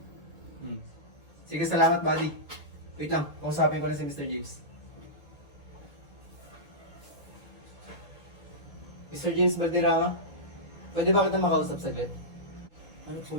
Sige, salamat, buddy. Wait lang, kausapin ko na si Mr. James. Mr. James Valderrama, pwede ba kita makausap saglit? Ano po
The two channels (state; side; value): normal; both; correlation -0.15